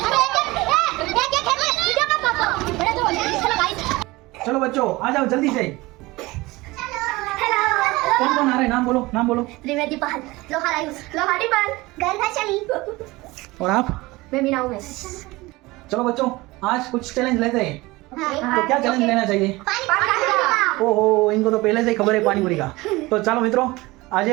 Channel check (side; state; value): left; quieter; 21.2 dB